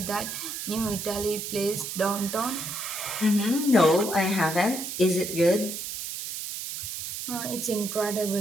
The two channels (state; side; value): noise; right; hiss, 6 dB below the sound